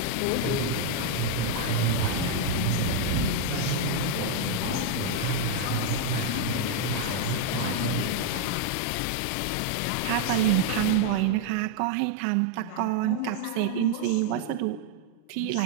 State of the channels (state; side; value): different; both; correlation 0.00